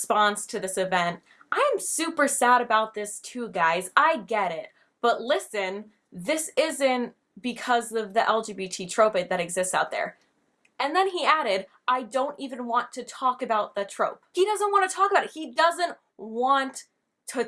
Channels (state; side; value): identical; both; correlation 1.00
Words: to this event, I am super sad about this too, guys. I get it. But listen, this isn't because of the LGBT trope that exists out there. And then he added, I don't even want to talk about the trope. He doesn't want to talk about it. He doesn't want to